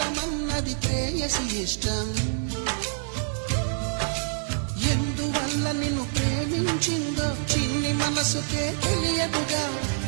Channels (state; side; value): silent; left; digital silence